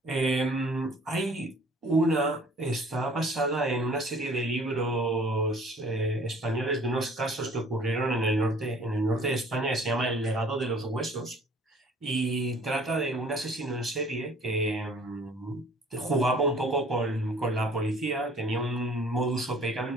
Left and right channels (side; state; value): both; normal; correlation 0.53